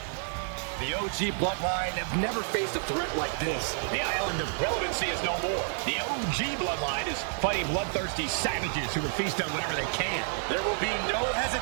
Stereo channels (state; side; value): silent; left; 58 dB below the other